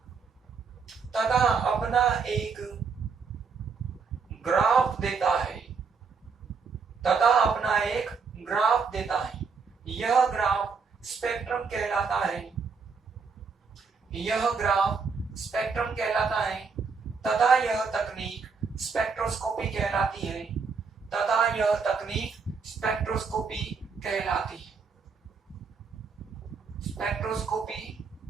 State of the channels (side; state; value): left; quieter; 5.3 dB